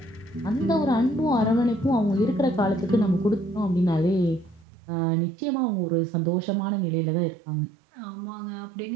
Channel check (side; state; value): left; drops out; at 4.7 s